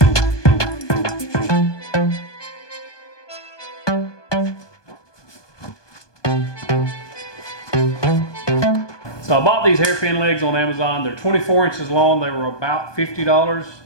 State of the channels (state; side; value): late; right; 1.2 ms